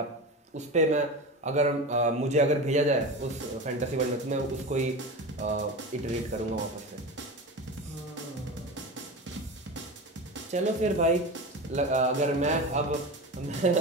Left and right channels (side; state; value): both; normal; correlation 0.26